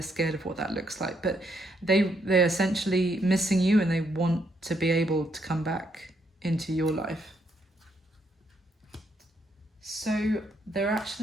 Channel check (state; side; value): normal; both; correlation 0.74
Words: scared of what that looks like. But they're essentially missing you, and they want to be able to come back into your life. So their